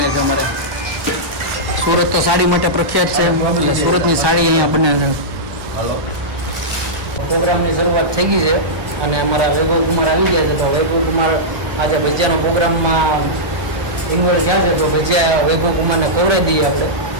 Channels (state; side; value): late; left; 1.3 ms